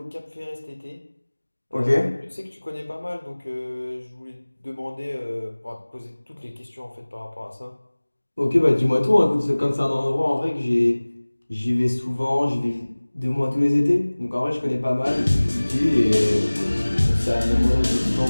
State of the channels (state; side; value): inverted; both; correlation -1.00